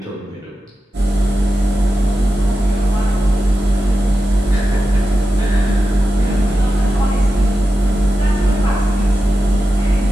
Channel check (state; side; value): normal; both; correlation 0.91